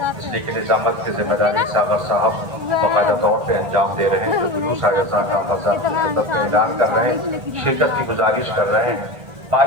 اس لیے کہ نظامت کی ذمہ داری ساغر صاحب باقاعدہ طور پہ انجام دے رہے ہیں، تو جلوس آیزاں کا حضرات کی خدمت میں اعلان کر رہے ہیں، شرکت کی گزارش کر رہے ہیں۔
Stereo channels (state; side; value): late; left; 1.7 ms